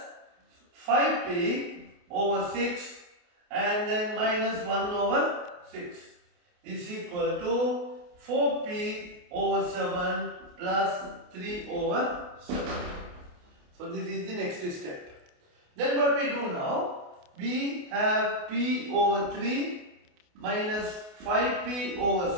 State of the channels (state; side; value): late; left; 28 ms